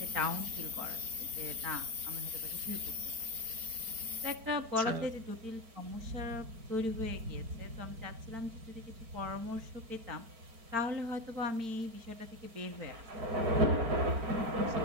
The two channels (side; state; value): left; late; 4.4 ms